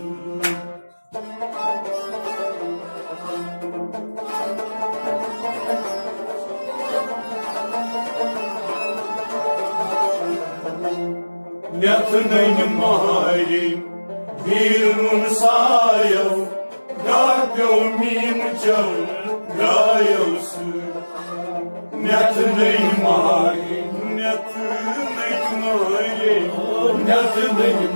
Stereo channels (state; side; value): inverted; both; correlation -1.00